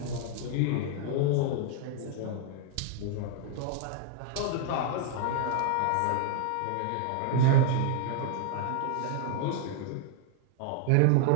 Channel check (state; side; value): different; both; correlation 0.00